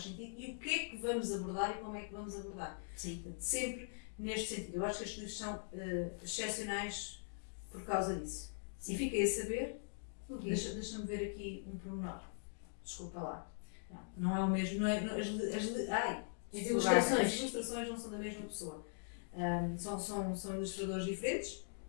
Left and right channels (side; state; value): right; silent; digital silence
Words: sentido e o que é que vamos abordar e como é que vamos abordar. Sempre neste sentido. Eu acho que estes livros são excepcionais por causa disso. E fiquei a saber, deixa-me ver aqui um pormenor. Desculpa lá. Não é o mesmo, as ilustrações não são da mesma pessoa. São ilustradores diferentes.